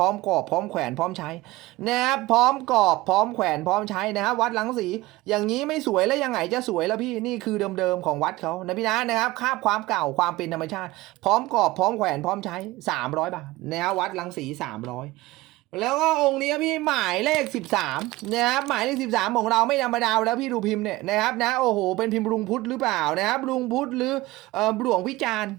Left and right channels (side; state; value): left; quieter; 19.2 dB